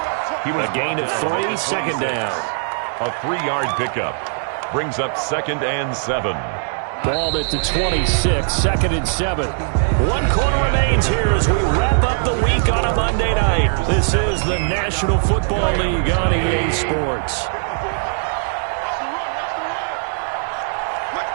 A gain of 3, 2nd down. A 3-yard pickup. Brings up 2nd and 7. Ball at the 26, 2nd and 7. 1 quarter remains here as we wrap up the week on a Monday night. This is the National Football League on EA Sports.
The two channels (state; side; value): silent; left; 62 dB below the other